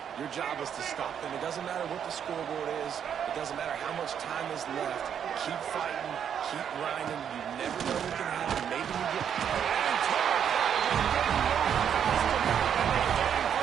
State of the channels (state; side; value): quieter; left; 8.4 dB